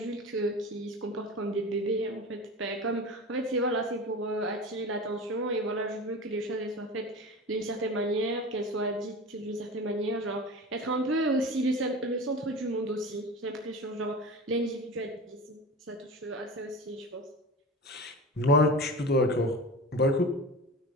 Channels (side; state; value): both; normal; correlation 0.31